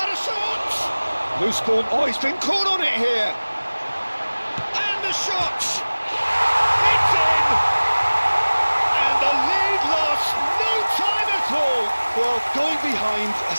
a shot! Loose ball. Oh, he's been caught on it here. And the shot! It's in! And the lead lost no time at all. Well, going behind has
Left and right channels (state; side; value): inverted; both; correlation -1.00